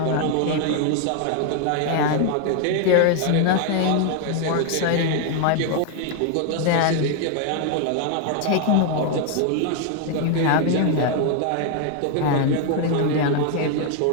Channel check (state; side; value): different; both; correlation 0.00